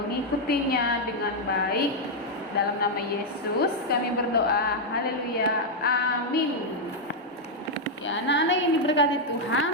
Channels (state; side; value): normal; both; correlation -0.01